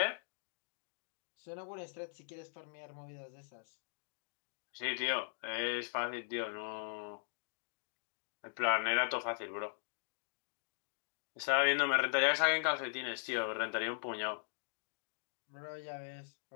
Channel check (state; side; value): silent; right; digital silence